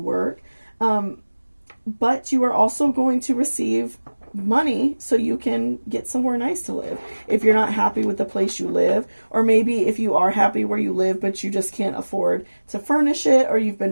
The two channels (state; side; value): inverted; both; correlation -1.00